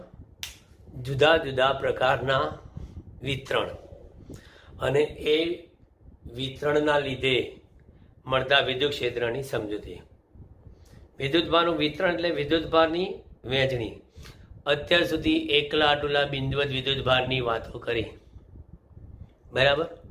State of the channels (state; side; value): identical; both; correlation 1.00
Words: જુદા જુદા પ્રકારના વિતરણ અને એ વિતરણના લીધે મળતા વિદ્યુત ક્ષેત્રની સમજૂતી. વિદ્યુત ભારનું વિતરણ એટલે વિદ્યુત ભારની વહેંચણી. અત્યાર સુધી એકલા આટલા બિંદુવત વિદ્યુત ભારની વાતો કરી, બરાબર.